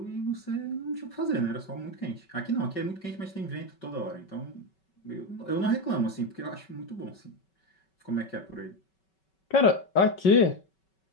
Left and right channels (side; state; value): right; late; 5.3 ms